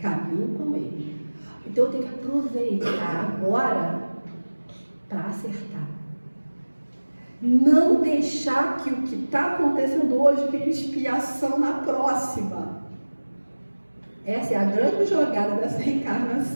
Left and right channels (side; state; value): both; inverted; correlation -1.00